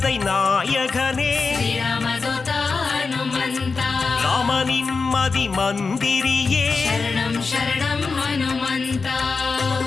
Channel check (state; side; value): quieter; right; 4.5 dB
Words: நாயகனே ஸ்ரீராமதூதா ஹனுமந்தா ராமனின் மதி மந்திரியே சரணம் சரணம் ஹனுமந்தா